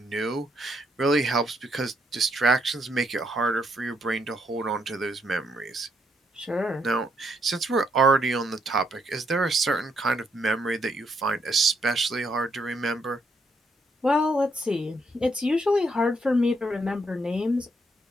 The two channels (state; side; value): normal; both; correlation 0.74